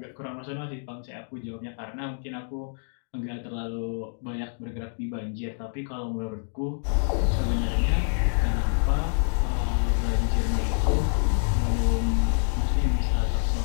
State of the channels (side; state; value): right; silent; 60 dB below the other